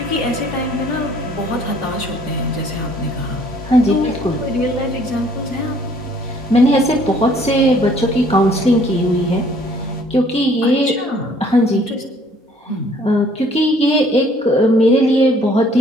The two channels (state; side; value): normal; both; correlation 0.59